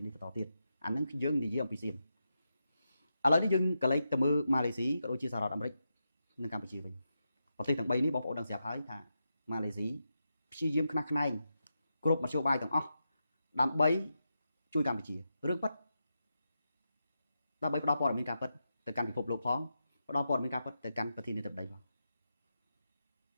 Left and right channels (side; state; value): both; inverted; correlation -0.87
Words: នេះបន្តទៀតអាហ្នឹងយើងនិយាយអំពីសៀមឥឡូវនេះយើងក៏លេចទៅមើលម៉ាឡេស៊ីក៏ដូចជាសហរដ្ឋអាមេរិកនិងកម្ពុជាវិញប្រទេសទាំង3នេះបងប្អូនដឹងស្រាប់ហើយថាម៉ាឡេស៊ីព្យាយាមខ្នះខ្នែងគ្រប់មធ្យោបាយទាំងអស់ដើម្បីជួយកម្ពុជារឿងពិតដើម្បីផ្ដល់ព័ត៌មានការពិតទៅកាន់ពិភពលោកផងផ្ដល់ព័ត៌មានការពិតទៅកាន់ប្រធានាធិបតីផង